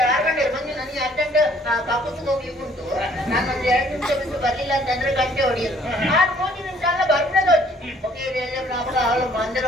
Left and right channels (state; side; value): normal; both; correlation 0.60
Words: 6 ಗಂಟೆ ಬಂದು ನನಗೆ ಅರ್ಜೆಂಟ್ ಕಪ್ಪತ್ತು ಹೋಗ್ಲಿಕ್ಕೆ ಉಂಟು ನಾನು ಒಂದು 2 ನಿಮಿಷ ಬಿಟ್ಟು ಬರ್ಲಿಲ್ಲ ಅಂತಂದ್ರೆ ಗಂಟೆ ಹೊಡಿಯೋದು 6-3 ನಿಮಿಷ ಎಲ್ಲ ಬರ್ನದು ಅವಳು ಮಂದಿರ